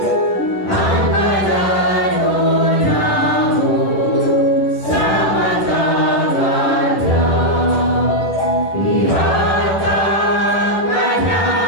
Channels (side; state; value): right; late; 10 ms